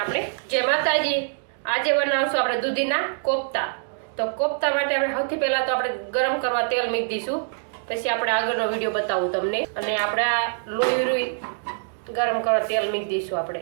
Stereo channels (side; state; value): left; silent; digital silence